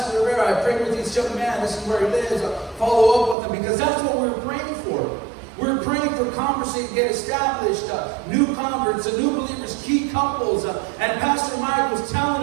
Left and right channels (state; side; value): drops out; left; at 3.4 s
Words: Rivera, I prayed with this young man, this is where he lives, follow up with him, because that's what we were praying for. We're praying for converts to get established, new converts, new believers, key couples. And Pastor Mike was